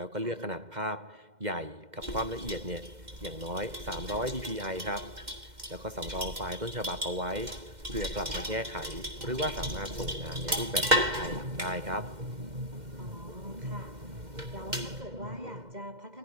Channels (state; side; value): late; left; 2.1 ms